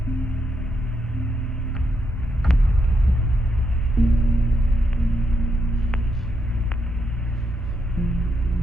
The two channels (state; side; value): normal; both; correlation 0.80